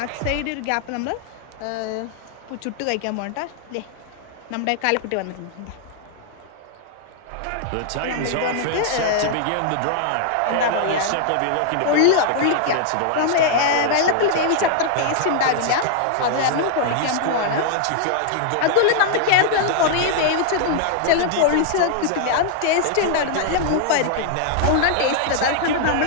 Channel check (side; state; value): both; different; correlation -0.01